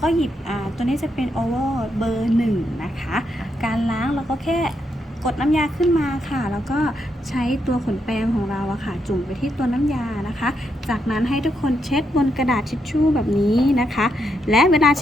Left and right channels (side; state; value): both; normal; correlation 0.80